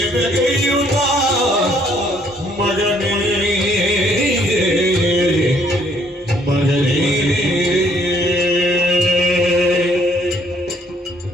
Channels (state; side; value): normal; both; correlation 0.65